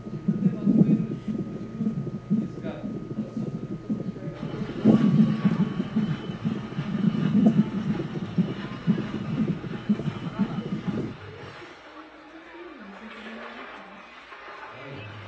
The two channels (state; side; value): identical; both; correlation 1.00